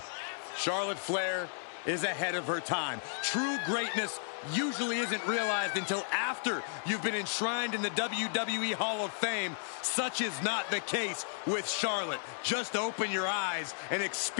Charlotte Flair is ahead of her time. True greatness usually isn't realized until after you've been enshrined in the WWE Hall of Fame. Such is not the case with Charlotte. Just open your eyes and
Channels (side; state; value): right; silent; digital silence